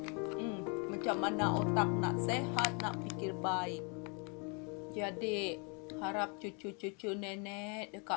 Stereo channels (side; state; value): right; quieter; 34.8 dB